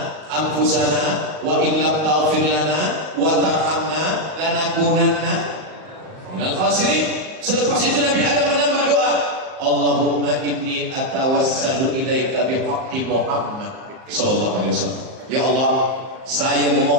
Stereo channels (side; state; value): left; late; 38 ms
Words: anfusana wa illam taghfir lana wa tarhamna lanakunanna minal khasirin. Selepas itu Nabi Adam menambah doa, Allahumma inni atawassalu ilaika bihaqqi Muhammad sallallahu alaihi wasallam. Ya Allah, saya